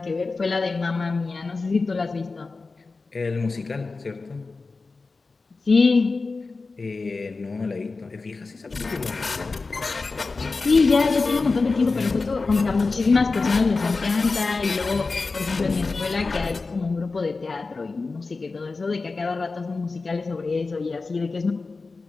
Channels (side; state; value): right; quieter; 3.9 dB